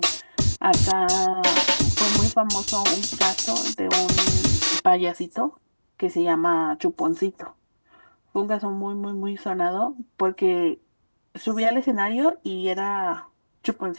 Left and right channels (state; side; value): inverted; both; correlation -1.00